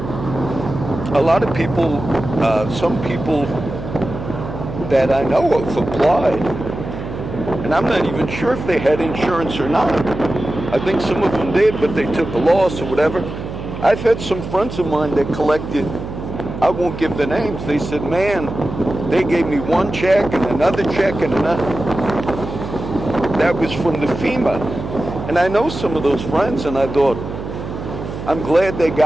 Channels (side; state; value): right; noise; hum, 8 dB below the sound